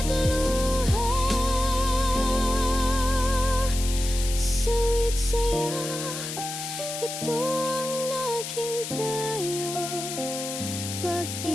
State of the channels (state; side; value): noise; left; hiss, 7 dB below the sound